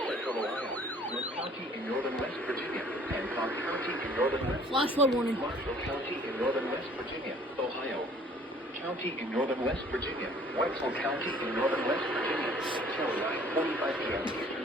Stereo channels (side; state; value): both; normal; correlation 0.55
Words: Central Ohio, North County in northern West Virginia, Hancock County in northern West Flash flood warning. Marshall County in northern West Virginia, Ohio. County in northern West Virginia, Wetzel County in northern West Virginia, Carolina, 45 p.m. Eastern